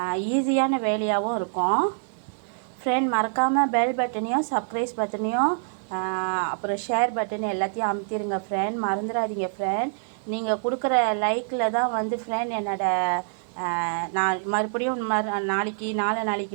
ஈஸியான வேலையாகவும் இருக்கும் ஃப்ரெண்ட். மறக்காமல் பெல் பட்டனையும் சப்ஸ்கிரைப் பட்டனையும் அப்புறம் ஷேர் பட்டன் எல்லாத்தையும் அமுத்திடுங்க ஃப்ரெண்ட், மறந்துடாதீங்க ஃப்ரெண்ட். நீங்கள் கொடுக்குற லைக்கில் தான் ஃப்ரெண்ட் நான் மறுபடியும்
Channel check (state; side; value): silent; left; digital silence